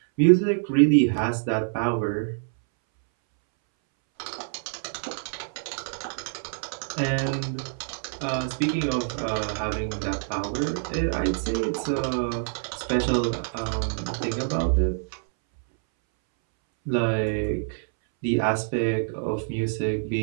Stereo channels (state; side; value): silent; left; 61 dB below the other